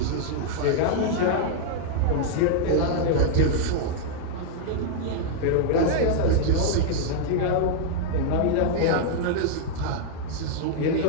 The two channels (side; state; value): both; different; correlation -0.01